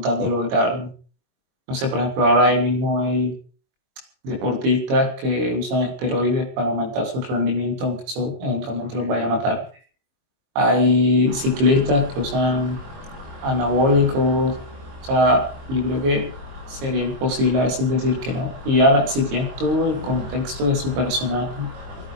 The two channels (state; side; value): late; left; 22 ms